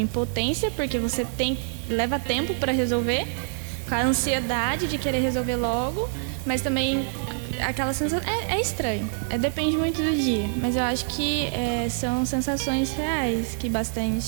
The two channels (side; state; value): left; silent; digital silence